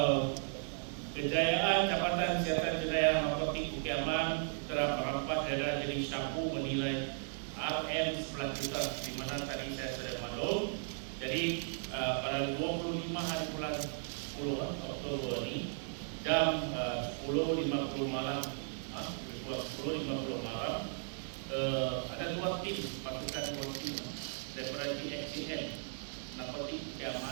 kejayaan Jabatan Siasatan Jenayah Narkotik Kediaman telah merampas daerah jenis sabu bernilai RM11 juta, di mana tadi saya sudah maklum. Jadi pada 25 hari bulan 10 Oktober ini jam 10.50 malam, 10.50 malam, ada dua tim, pasukan dua tim daripada DXCN Narkotik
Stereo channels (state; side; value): silent; left; digital silence